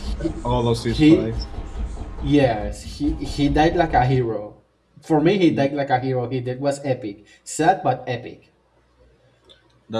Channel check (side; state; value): both; identical; correlation 1.00